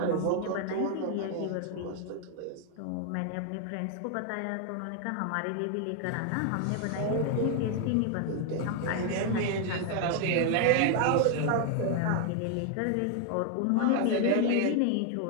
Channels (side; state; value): both; different; correlation 0.00